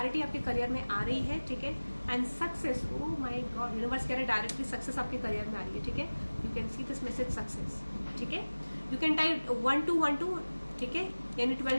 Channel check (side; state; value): both; inverted; correlation -1.00